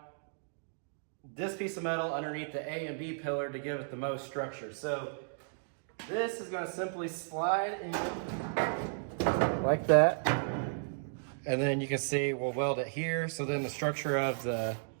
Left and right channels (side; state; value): left; silent; digital silence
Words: this piece of metal underneath the A and B pillar to give it the most structure. So this is going to simply slide in like that, and then you can see we'll weld it here. So then the structure of the